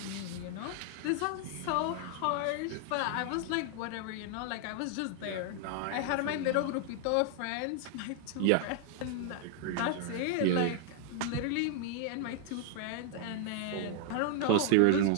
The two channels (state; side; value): different; both; correlation 0.00